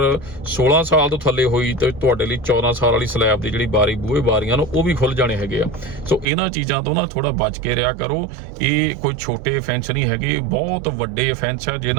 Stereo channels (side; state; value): left; drops out; at 6.2 s